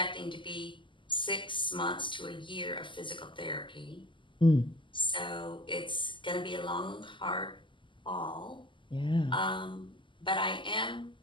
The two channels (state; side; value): late; right; 0.24 ms